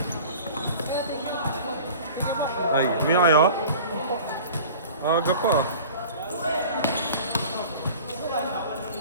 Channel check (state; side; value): inverted; both; correlation -0.42